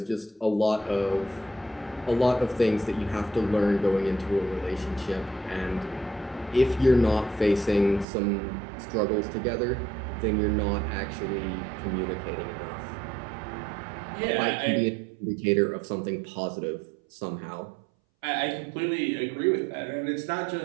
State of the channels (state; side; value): drops out; left; at 8.1 s